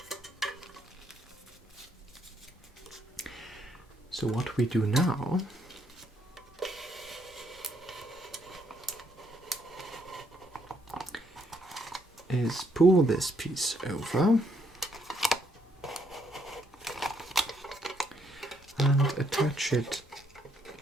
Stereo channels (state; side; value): normal; both; correlation 0.72